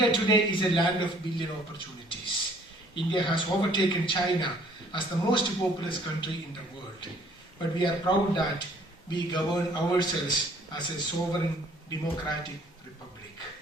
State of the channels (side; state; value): both; normal; correlation 0.59